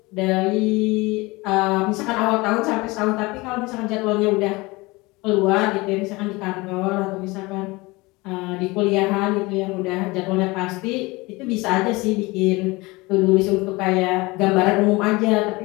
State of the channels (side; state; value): right; quieter; 23.2 dB